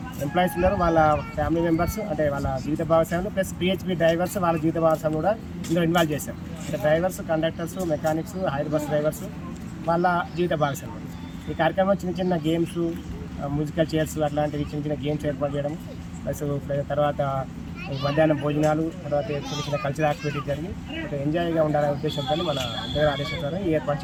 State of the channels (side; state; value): both; identical; correlation 1.00